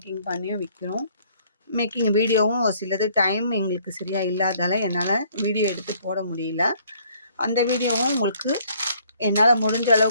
பண்ணியும் விற்கிறோம். மேக்கிங் வீடியோவும் ஒரு சிலது டைம் எங்களுக்கு சரியாக இல்லாதால என்னால் வீடியோ எடுத்து போட முடியல. அந்த வீடியோவும் உங்களுக்கு என்னால் முடிஞ்ச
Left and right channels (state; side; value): inverted; both; correlation -0.61